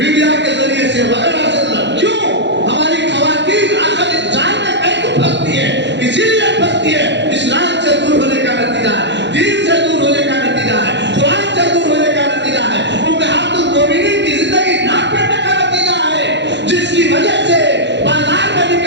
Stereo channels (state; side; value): late; left; 0.52 ms